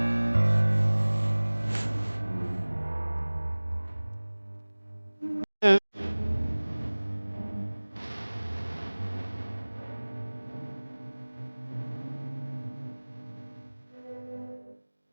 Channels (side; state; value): both; inverted; correlation -1.00